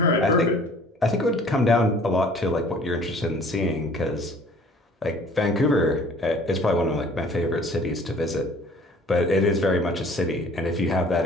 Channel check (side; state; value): both; normal; correlation 0.52